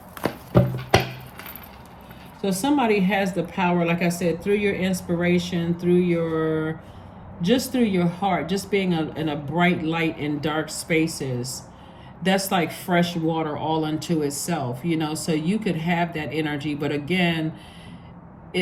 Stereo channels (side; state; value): both; identical; correlation 1.00